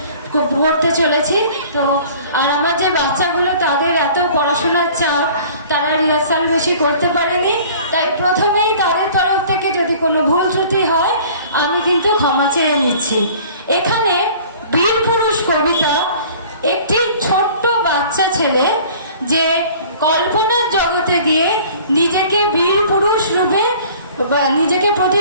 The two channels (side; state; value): both; inverted; correlation -0.48